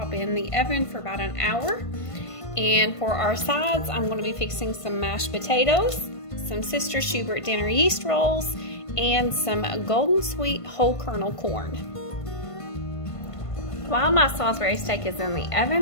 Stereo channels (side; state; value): right; late; 1.5 ms